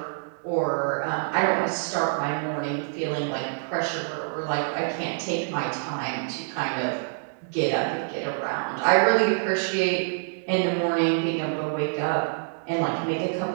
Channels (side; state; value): left; silent; digital silence